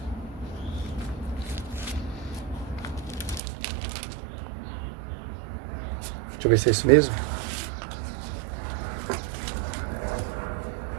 Deixa eu ver se é isso mesmo.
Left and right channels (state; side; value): drops out; left; at 3.4 s